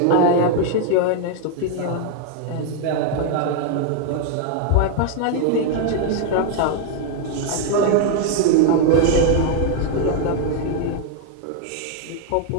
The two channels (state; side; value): different; both; correlation 0.01